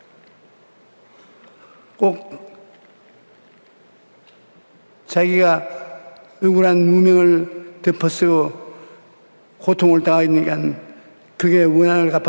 꼭 자기가 억울한 누명을 덮어쓰고 고통을 당하니까 그게 원한을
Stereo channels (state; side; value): inverted; both; correlation -1.00